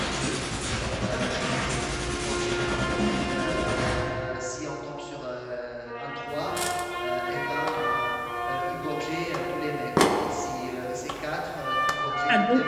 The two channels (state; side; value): identical; both; correlation 1.00